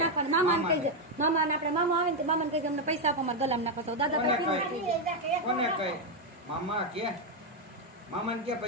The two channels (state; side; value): normal; both; correlation 0.03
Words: નાખવાનું. મામાને કહી દે, મામાને આપણે મામા આવે ને મામાને કહી દે અમને પૈસા આપો, અમારે ગલામ નાખો. તો દાદા કોને કહે મામા કે મામાને કે